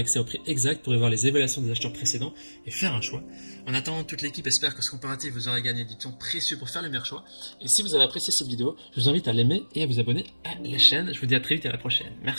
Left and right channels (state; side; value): inverted; both; correlation -1.00